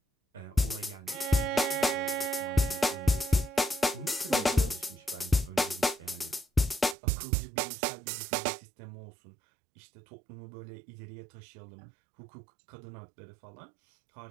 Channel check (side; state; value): left; drops out; at 7.0 s